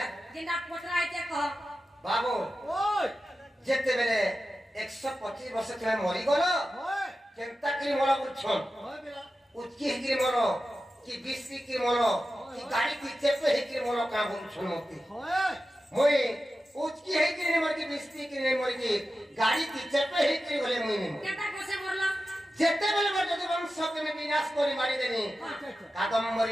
जिंदा पोतरा आइते कह बाबू ओय जेते बेले 125 वर्ष तले मरि गलो ओय केनता की मोला बुछन ओय बेला उचकी हिकरी मोरो कि बिस्ती की मोरो कि गाड़ी की चेपे हिकरी मोरो का बुछन मती ओय मोई उचकी हिकरी ने मरकी बिस्ती की ने मरकी गाड़ी की चेपे हिकरी बोले मुई ने केता कोसे मोरला जेते बेले मोर जदि वंश के में विनाश करी मारी देनी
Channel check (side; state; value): both; normal; correlation 0.93